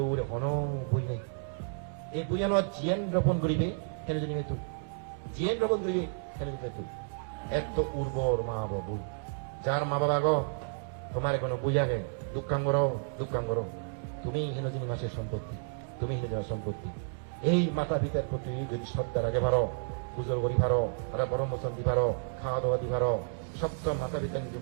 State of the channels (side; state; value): left; silent; digital silence